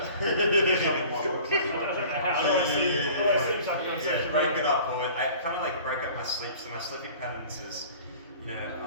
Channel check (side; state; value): both; inverted; correlation -0.46